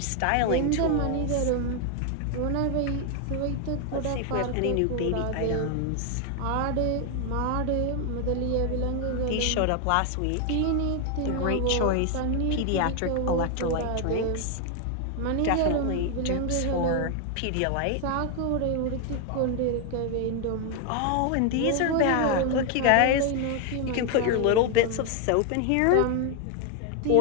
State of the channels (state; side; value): different; both; correlation 0.01